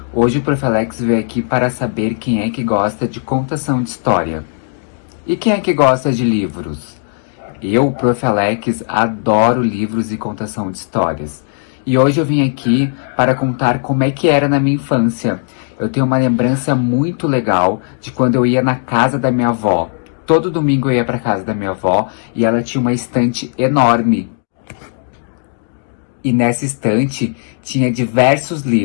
Hoje o Prof. Alex veio aqui para saber quem é que gosta de contação de história. E quem é que gosta de livros? Eu, Prof. Alex, adoro livros e contação de histórias. E hoje eu vim aqui para contar como é que era na minha infância. Eu tenho uma lembrança muito legal de quando eu ia na casa da minha avó. Todo domingo eu ia para casa da minha avó e ela tinha uma estante enorme. E nessa estante tinha diversos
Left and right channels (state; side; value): silent; right; 64 dB below the other